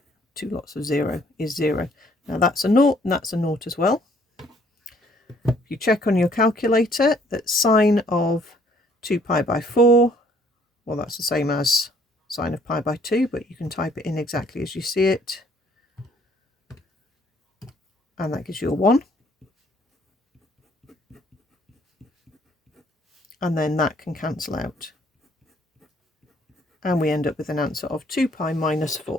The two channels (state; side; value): normal; both; correlation 0.62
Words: 2 lots of 0 is 0. Now that's a 0 and that's a 0 as well. If you check on your calculator that sine of 2 pi by 4, well, that's the same as sine of pi by 2, but you can type it in exactly as you see it. And that gives you a 1. And then that can cancel out. And we end up with an answer of 2 pi minus